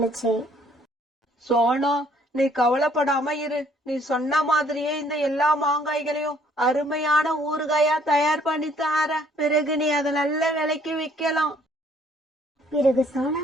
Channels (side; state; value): both; normal; correlation 0.62